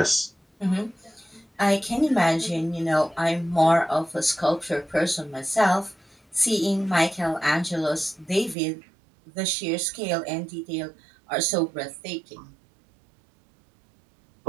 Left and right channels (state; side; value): drops out; left; at 8.6 s